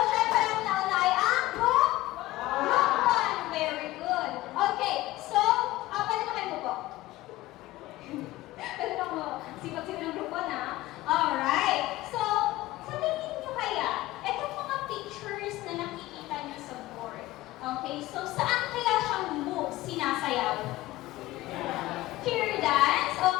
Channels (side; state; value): right; quieter; 17.3 dB